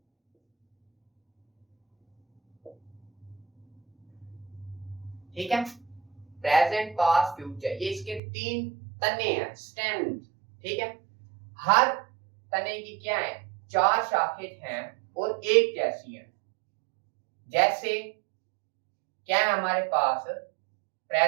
ठीक है, प्रेजेंट, पास्ट, फ्यूचर, ये इसके 3 तने हैं, स्टेम। ठीक है, हर तने की क्या है? 4 शाखें हैं और एक कैसी है। जैसे क्या है हमारे पास?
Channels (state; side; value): drops out; left; at 8.2 s